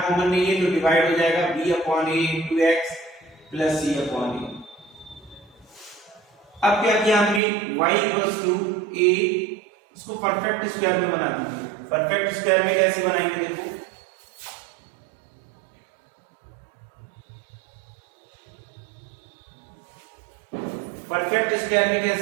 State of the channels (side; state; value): left; drops out; at 7.4 s